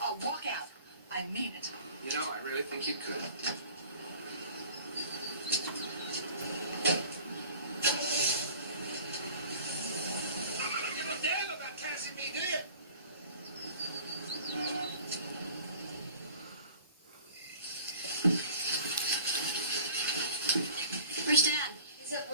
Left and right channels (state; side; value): inverted; both; correlation -0.47